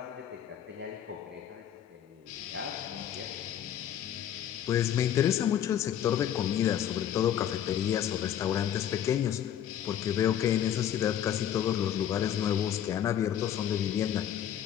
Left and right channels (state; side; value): quieter; right; 10.2 dB